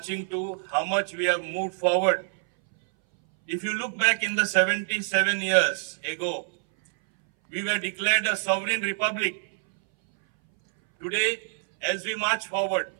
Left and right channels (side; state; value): left; silent; 60 dB below the other